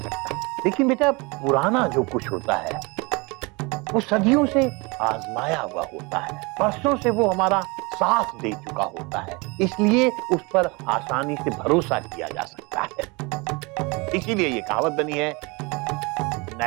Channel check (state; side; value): quieter; left; 27.2 dB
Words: लेकिन बेटा पुराना जो कुछ होता है वो सदियों से आजमाया हुआ होता है, बरसों से वो हमारा साथ दे चुका होता है, इसलिए उस पर आसानी से भरोसा किया जा सकता है। इसीलिए ये कहावत बनी है,